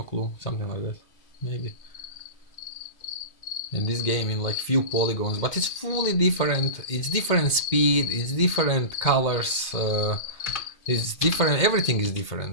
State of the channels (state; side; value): late; right; 2.5 ms